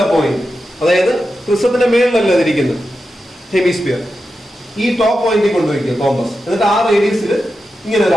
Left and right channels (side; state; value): both; normal; correlation 0.90